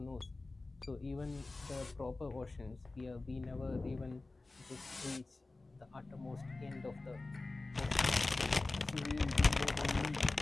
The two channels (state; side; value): quieter; right; 3.3 dB